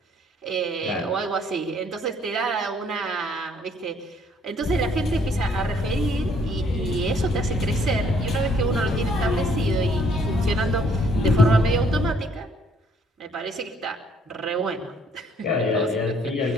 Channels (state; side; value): normal; both; correlation 0.64